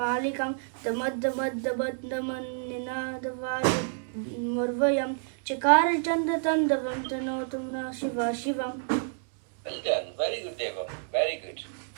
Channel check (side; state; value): left; silent; digital silence